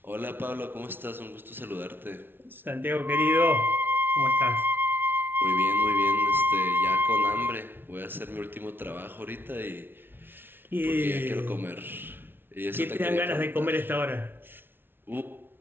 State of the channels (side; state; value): left; late; 0.10 ms